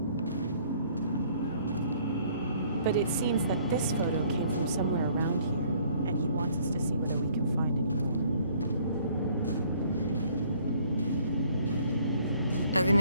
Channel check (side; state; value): both; inverted; correlation -0.60